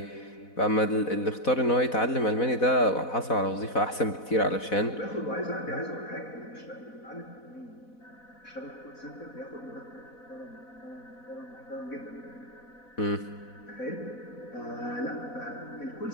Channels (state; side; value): late; right; 4.1 ms